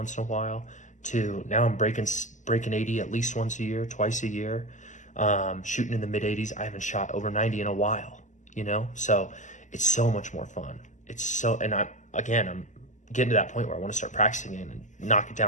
in a while, to now I'm breaking 80 at least once a year, twice a year, shooting in the mid 80s. I haven't shot over 90 in a while, so it's so much more fun. And I'm getting to that point where I want to start practicing it and knock it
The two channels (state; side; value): late; right; 0.36 ms